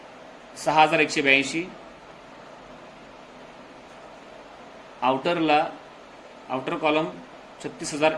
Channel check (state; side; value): identical; both; correlation 1.00